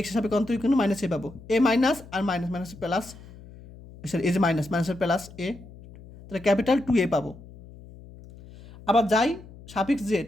সাপেক্ষে অন্তরীকরণ মাইনাস এ পাবো, এ মাইনাস আর মাইনাস প্লাস, সরি এই যে মাইনাসের প্লাস এ, তাহলে ক্যাপিটাল টু এ পাবো। আবার যাই সাফিক্স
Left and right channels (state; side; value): noise; left; hum, 19 dB below the sound